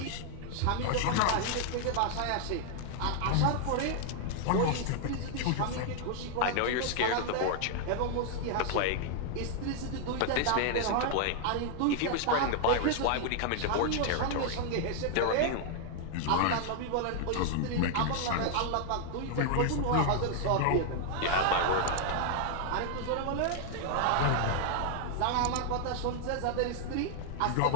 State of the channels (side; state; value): both; different; correlation 0.00